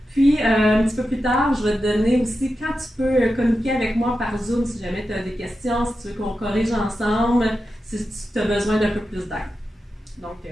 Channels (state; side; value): normal; both; correlation 0.90